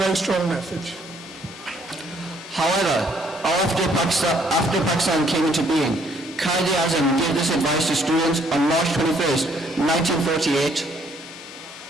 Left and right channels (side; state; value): both; normal; correlation 0.66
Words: strong message. However, after Pakistan came into being, Quaid-e-Azam gave this advice to students on March 21st, 1948,